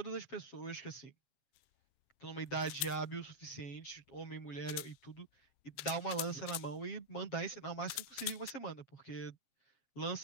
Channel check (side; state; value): right; late; 7.4 ms